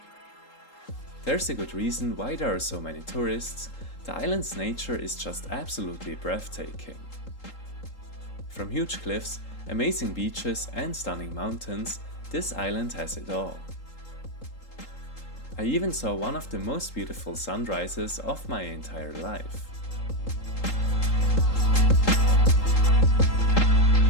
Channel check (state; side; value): late; right; 3.8 ms